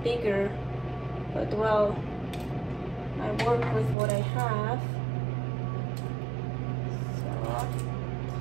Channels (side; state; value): left; drops out; at 4.0 s